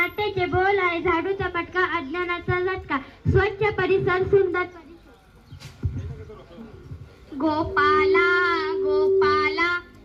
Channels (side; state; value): both; identical; correlation 1.00